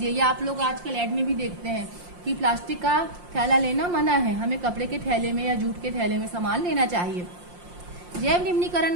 या आप लोग आजकल ऐड में भी देखते हैं कि प्लास्टिक का थैला लेना मना है, हमें कपड़े के थैले में या जूट के थैले में सामान लेना चाहिए। जैव निम्नीकरण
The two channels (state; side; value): late; left; 5.7 ms